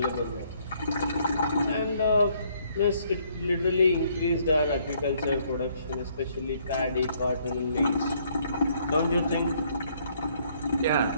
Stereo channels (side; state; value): both; inverted; correlation -0.67